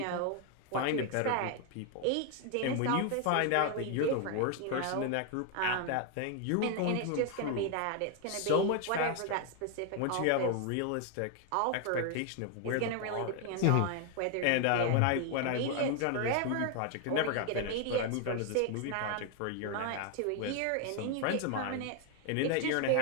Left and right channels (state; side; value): different; both; correlation 0.01